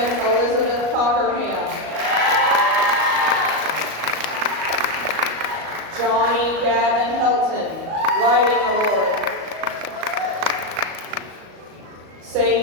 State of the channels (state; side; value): late; left; 38 ms